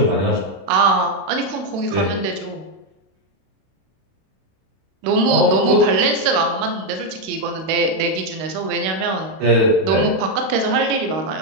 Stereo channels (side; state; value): left; late; 31 ms